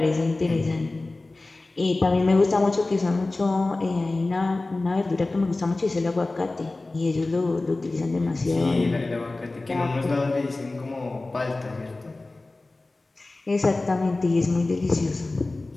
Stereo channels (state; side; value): quieter; right; 3.1 dB